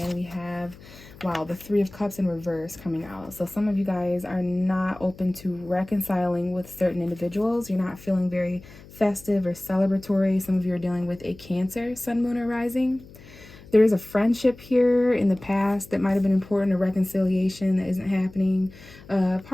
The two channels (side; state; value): left; noise; hum, 21 dB below the sound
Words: and we have, wow, the Three of Cups in reverse coming out. So some of you guys are not open to reconciling with certain individuals. You're not feeling very festive or celebratory. Some of you are dealing with a Cancer, Sun, Moon, or Rising. There is a friendship here in the past that might have been important, a reconciliation that isn't happening, a